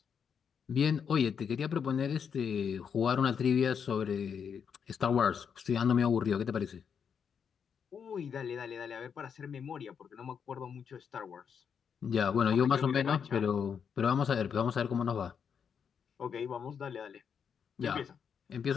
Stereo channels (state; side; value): quieter; right; 7.1 dB